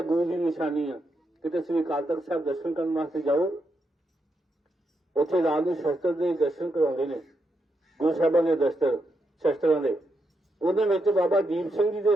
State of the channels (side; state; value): both; normal; correlation 0.82